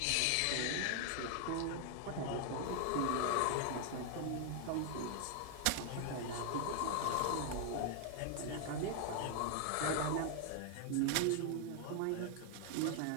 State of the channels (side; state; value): both; different; correlation 0.00